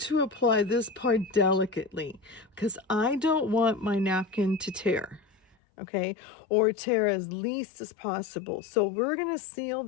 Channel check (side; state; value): right; drops out; at 5.6 s